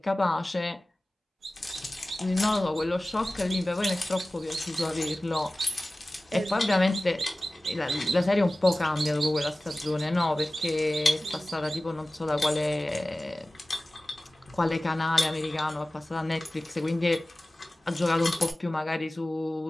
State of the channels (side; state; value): both; normal; correlation 0.97